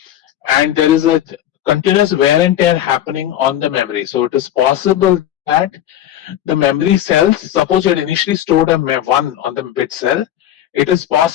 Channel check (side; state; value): right; quieter; 11.8 dB